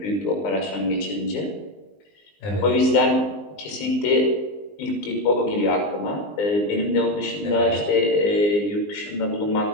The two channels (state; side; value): late; right; 20 ms